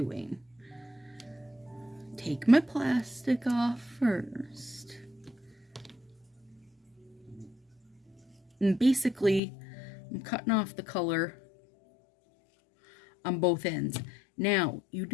Take my plastic off first. And basically, I'm cutting off the color on both ends. Now, you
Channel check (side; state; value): right; drops out; at 9.4 s